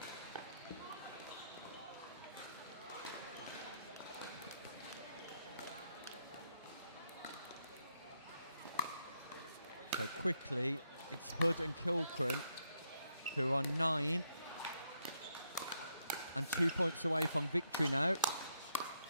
So quickly, it's Hood and Kilcran who are 9 and 2 points away from victory now.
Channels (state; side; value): inverted; both; correlation -0.78